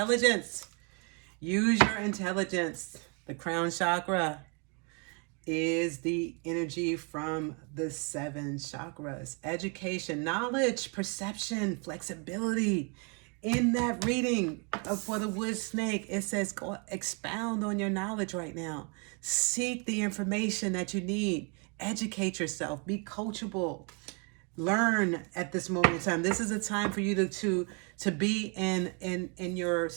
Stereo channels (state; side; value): quieter; left; 35.0 dB